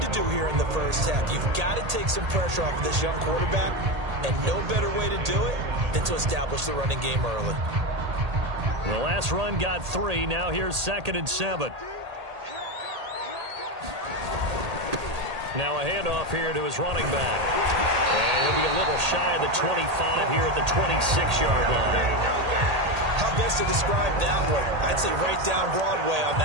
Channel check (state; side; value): late; left; 1.8 ms